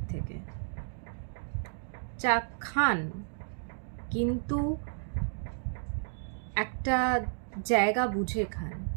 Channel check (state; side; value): silent; left; digital silence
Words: থেকে। চা খান, কিন্তু একটা জায়গা বুঝে খান।